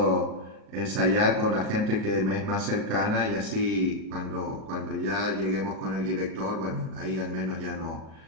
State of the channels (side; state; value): left; late; 37 ms